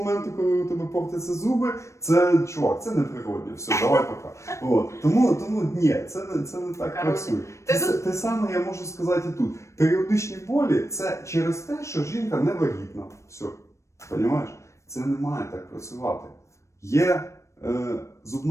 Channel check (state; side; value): late; right; 0.14 ms